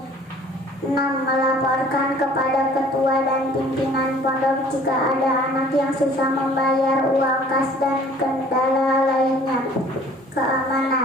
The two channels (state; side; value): normal; both; correlation 0.52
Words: 6. Melaporkan kepada ketua dan pimpinan pondok jika ada anak yang susah membayar uang kas dan kendala lainnya.